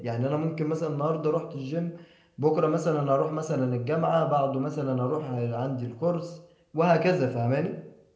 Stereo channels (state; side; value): identical; both; correlation 1.00